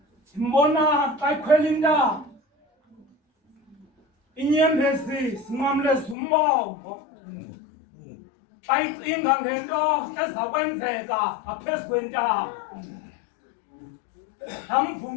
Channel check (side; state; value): right; drops out; at 6.2 s